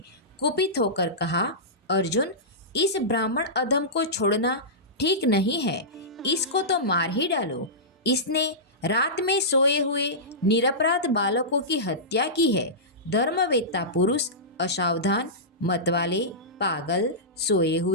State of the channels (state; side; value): normal; both; correlation -0.16